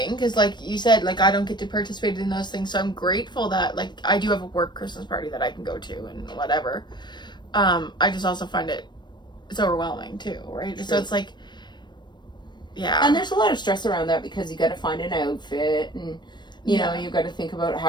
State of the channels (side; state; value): right; late; 0.22 ms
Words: because, like you said, like, I don't get to participate in those things, so I'm grateful that, like, I do have a work Christmas party that I can go to and whatever. I just also find it's overwhelming too, right? True. So it's like, yeah. And there's a lot of stress around that because you got to find an outfit and, you know, you got to think about